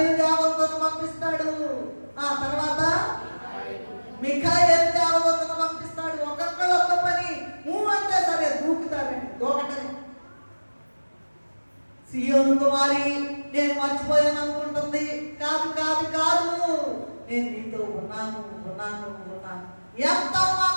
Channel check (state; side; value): inverted; both; correlation -1.00